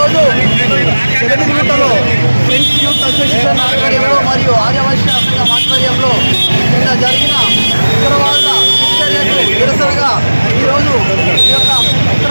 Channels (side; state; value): both; inverted; correlation -1.00